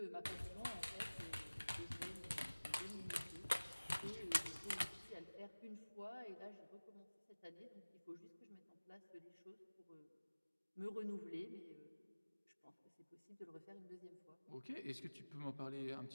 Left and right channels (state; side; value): inverted; both; correlation -1.00